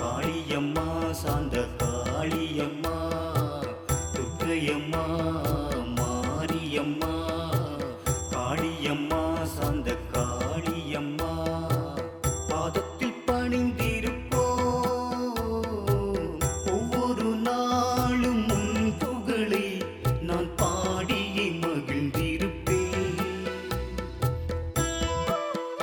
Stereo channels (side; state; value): both; identical; correlation 1.00